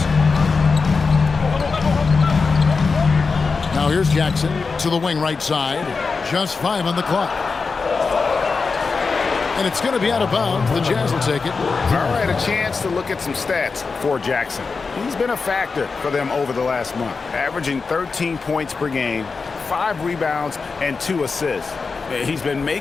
Now here's Jackson to the wing right side. Just 5 on the clock. And it's going to be out of bounds. The Jazz will take it. All right, a chance to look at some stats for Jackson. He's been a factor for them over the last month, averaging 13 points per game, 5 rebounds, and 2 assists. He's been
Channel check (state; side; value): quieter; right; 4.6 dB